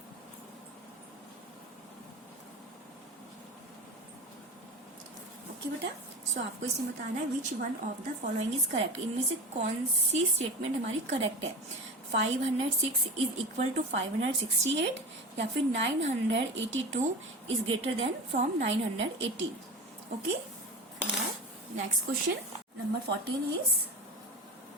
ओके बेटा, सो आपको इसमें बताना है which one of the following is correct, इनमें से कौन सी स्टेटमेंट हमारी करेक्ट है। 506 इज इक्वल टू 568 या फिर 982 is greater than from 918। Okay, next question number 14 is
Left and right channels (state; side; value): normal; both; correlation 0.29